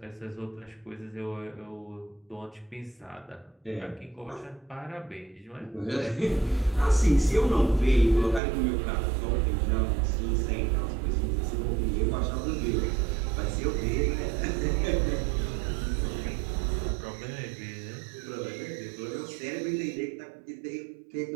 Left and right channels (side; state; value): left; drops out; at 8.4 s